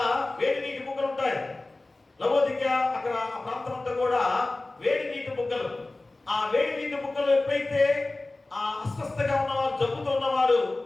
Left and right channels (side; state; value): right; quieter; 3.0 dB